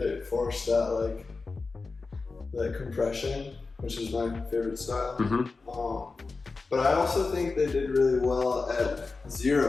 forced that compression, which is my favorite style. But I also think they did really well at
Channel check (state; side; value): quieter; right; 4.0 dB